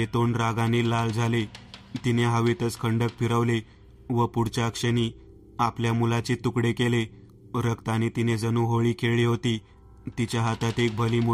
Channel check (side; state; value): both; identical; correlation 1.00